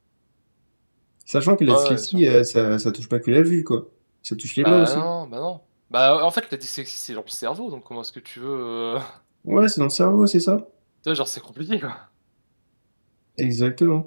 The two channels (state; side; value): inverted; both; correlation -1.00